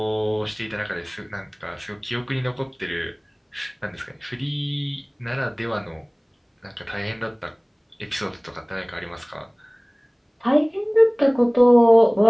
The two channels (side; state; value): both; identical; correlation 1.00